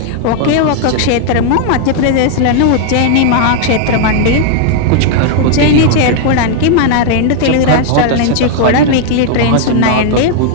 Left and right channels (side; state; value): both; different; correlation 0.00